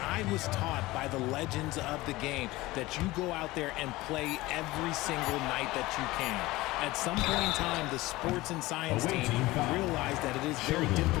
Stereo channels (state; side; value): quieter; right; 19.3 dB